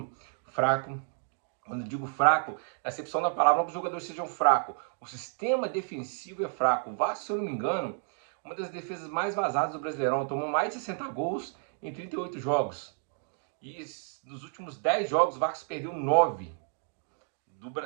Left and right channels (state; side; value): silent; left; 57 dB below the other